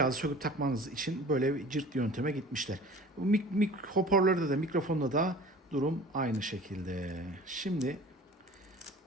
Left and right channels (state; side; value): normal; both; correlation 0.44